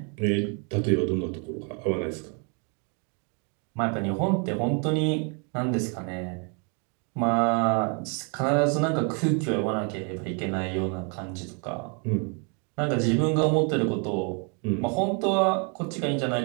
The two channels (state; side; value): quieter; left; 37.1 dB